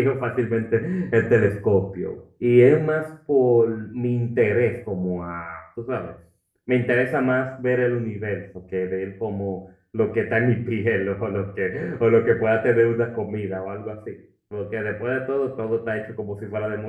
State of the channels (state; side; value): identical; both; correlation 1.00